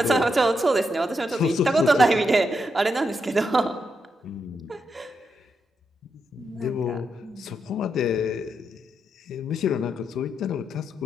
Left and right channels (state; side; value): normal; both; correlation 0.83